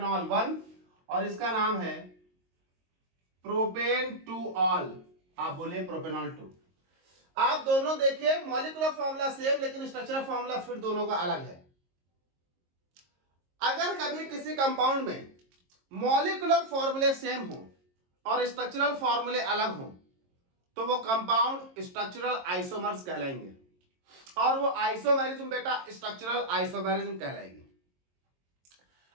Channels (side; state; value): left; late; 22 ms